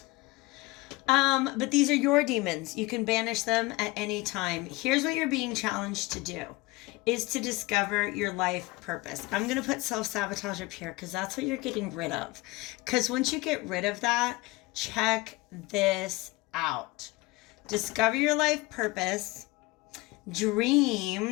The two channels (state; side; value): quieter; right; 22.3 dB